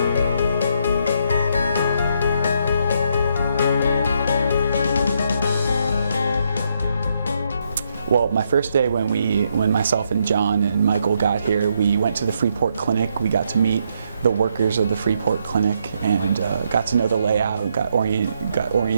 Well, my first day when myself and John and Michael got here, we went to the Freeport Clinic. We got to meet the workers of the Freeport Clinic and got to know the layout, got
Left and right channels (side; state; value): both; inverted; correlation -0.76